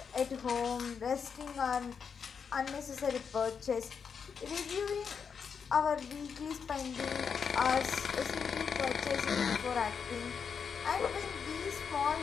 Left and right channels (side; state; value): right; quieter; 6.4 dB